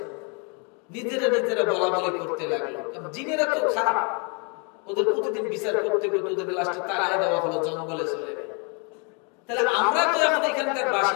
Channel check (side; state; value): right; quieter; 34.3 dB